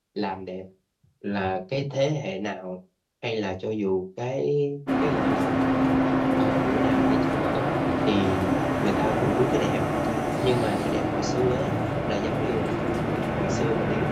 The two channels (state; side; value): identical; both; correlation 1.00